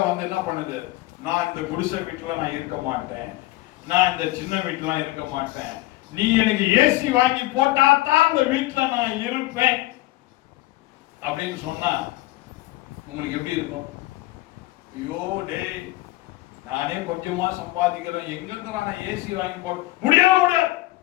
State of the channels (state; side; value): quieter; right; 18.5 dB